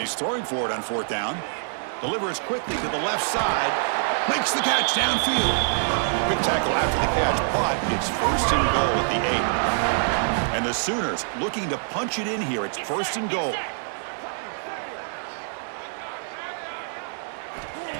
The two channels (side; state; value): left; silent; digital silence